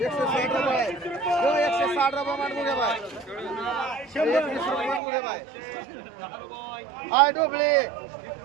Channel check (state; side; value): drops out; left; at 5.0 s